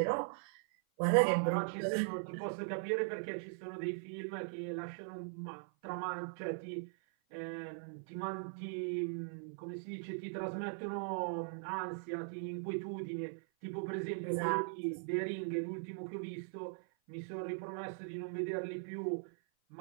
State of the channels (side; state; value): left; silent; 51 dB below the other